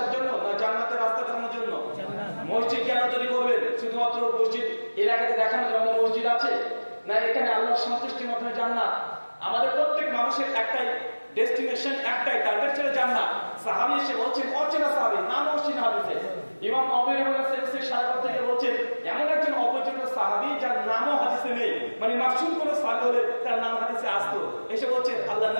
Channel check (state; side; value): inverted; both; correlation -1.00